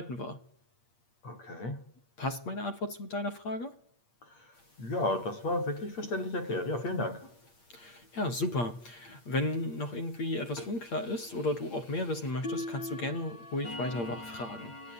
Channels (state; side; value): late; right; 8.6 ms